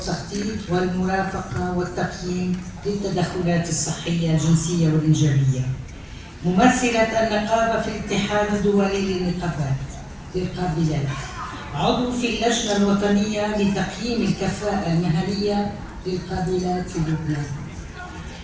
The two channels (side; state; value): both; identical; correlation 1.00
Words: والمرافقة والتقييم للتدخلات الصحية الجنسية والإنجابية. ممثلة النقابة في الاتحاد الدولي للنقابات للقابلات. عضو في اللجنة الوطنية لتقييم الكفاءة المهنية للقابلات في لبنان.